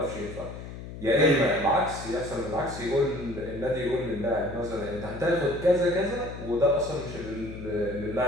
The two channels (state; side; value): noise; left; hum, 11 dB below the sound